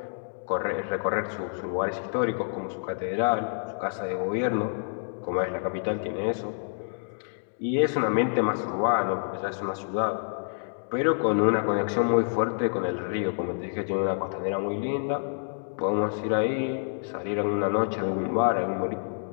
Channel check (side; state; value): right; silent; digital silence